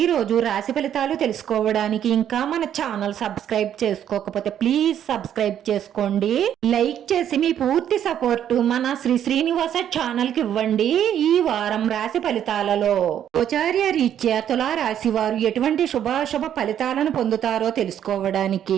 రాశి ఫలితాలు తెలుసుకోవడానికి ఇంకా మన ఛానల్ సబ్స్క్రైబ్ చేసుకోకపోతే ప్లీజ్ సబ్స్క్రైబ్ చేసుకోండి. లైక్ చేసి మీ పూర్తి సపోర్ట్ మన శ్రీనివాస ఛానల్ కి ఇవ్వండి. ఈ వారం రాశి ఫలితాలలో గోచార్య రీత్యా తులా రాశి వారు ఎటువంటి శుభాశుభ ఫలితాలను పొందుతారో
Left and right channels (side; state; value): left; quieter; 10.0 dB